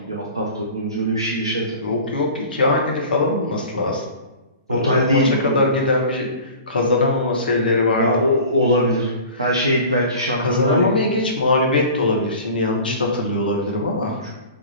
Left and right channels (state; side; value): inverted; both; correlation -0.40